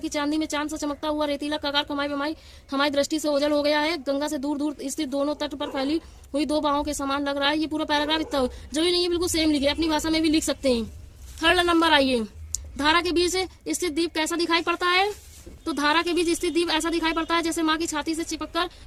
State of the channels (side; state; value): both; identical; correlation 1.00